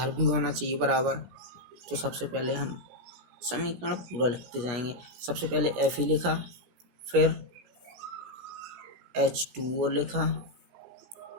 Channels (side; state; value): left; late; 16 ms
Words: भी होना चाहिए बराबर। तो सबसे पहले हम समीकरण पूरा लिखते जाएंगे। सबसे पहले Fe लिखा, फिर H2O लिखा,